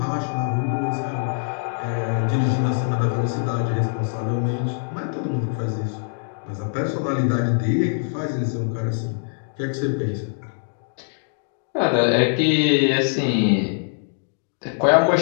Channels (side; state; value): right; silent; digital silence